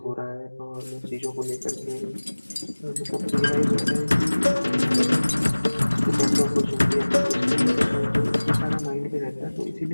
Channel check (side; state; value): both; inverted; correlation -1.00